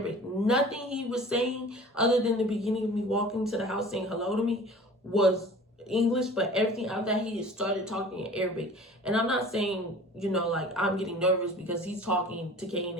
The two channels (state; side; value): normal; both; correlation 0.44